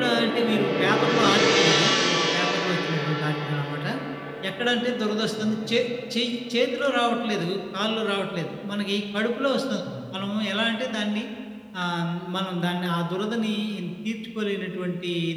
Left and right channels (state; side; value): identical; both; correlation 1.00